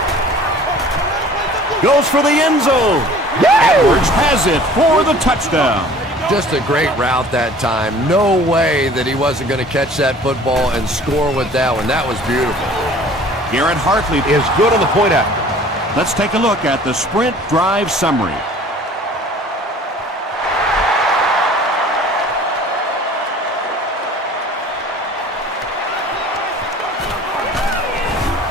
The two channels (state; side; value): normal; both; correlation 0.48